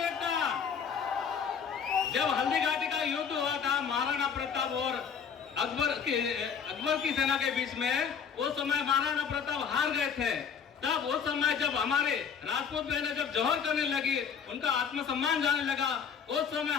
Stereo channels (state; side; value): quieter; right; 6.8 dB